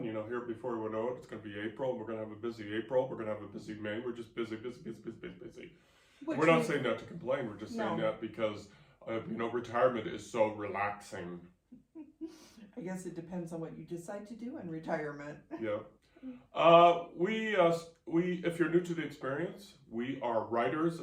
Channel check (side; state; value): both; identical; correlation 1.00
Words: Here before we know it, it's going to be April. We're going to have a busy April. We're going to have a busy May. We're just busy. We're not saying that to complain. We're just saying that because, retirement is so relaxing. I guess it depends on what you decide to do in retirement. Yeah. We if you're new to the experience, we are writers